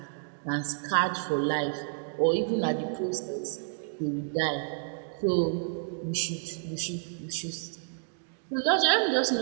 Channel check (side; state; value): left; silent; digital silence